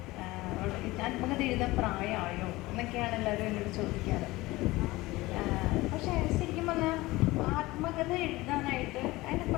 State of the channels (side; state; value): right; quieter; 19.8 dB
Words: ആത്മകഥ എഴുതാൻ പ്രായമായോ എന്നൊക്കെയാണ് എല്ലാവരും എന്നോട് ചോദിക്കാറ്. പക്ഷേ ശരിക്കും പറഞ്ഞാൽ ആത്മകഥ എഴുതാനായിട്ട് അതിൻ്റെ